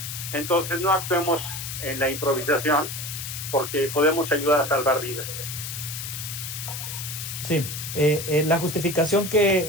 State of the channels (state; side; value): noise; left; hiss, 7 dB below the sound